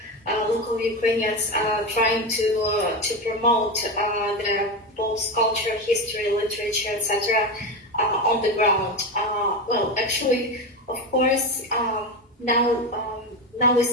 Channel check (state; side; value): normal; both; correlation 0.18